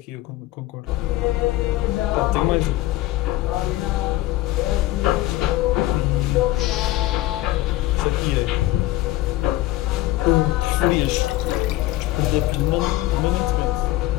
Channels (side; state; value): right; quieter; 16.3 dB